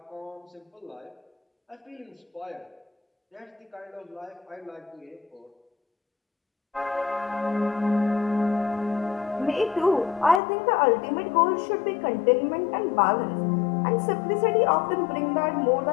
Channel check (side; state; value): right; drops out; at 10.4 s